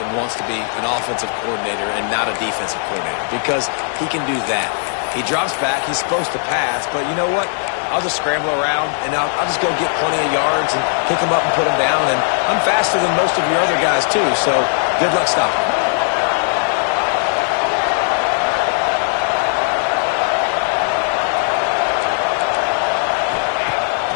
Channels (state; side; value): silent; right; 63 dB below the other